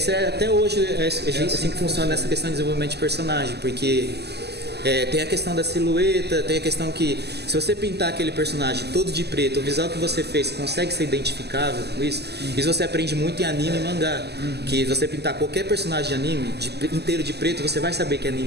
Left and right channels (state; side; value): late; left; 0.48 ms